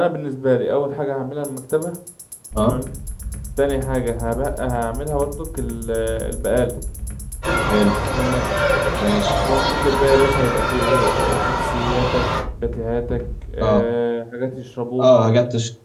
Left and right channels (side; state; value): both; identical; correlation 1.00